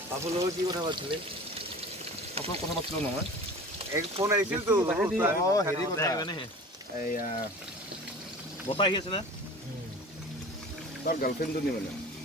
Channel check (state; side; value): normal; both; correlation 0.39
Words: বাবুৰ লগত কি কথা পাতিছিলি আপোনাৰ কথা পাতিছিলো নহয় এক ফোন আহিছিল তো হেৰি কথা এয়া বতাহ আহি আছে না তাৰ গাৰ্লফ্ৰেণ্ডজনী মানে